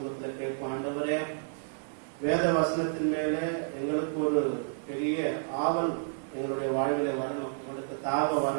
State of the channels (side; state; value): left; silent; digital silence